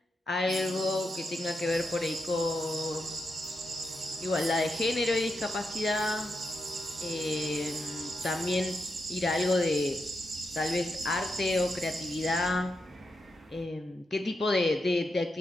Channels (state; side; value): normal; both; correlation 0.85